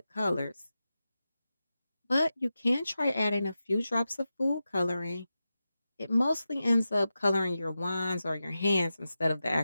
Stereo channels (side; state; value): both; inverted; correlation -0.92